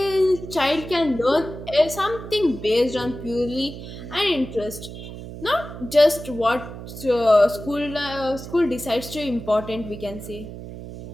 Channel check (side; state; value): right; noise; hum, 11 dB below the sound